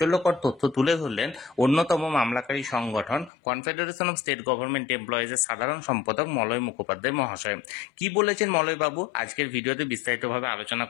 তথ্য তুলে ধরলেন অন্যতম মামলাকারী সংগঠন কনফেডারেশন অফ স্টেট গভর্নমেন্ট এমপ্লয়িজের সাধারণ সম্পাদক মলয় মুখোপাধ্যায় মহাশয়। কি বলেছেন মলয় বাবু আজকের ভিডিওতে বিস্তারিতভাবে আলোচনা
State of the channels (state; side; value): drops out; right; at 3.3 s